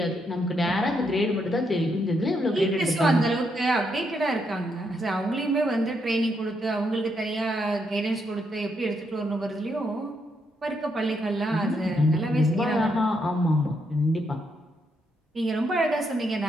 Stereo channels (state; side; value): normal; both; correlation 0.78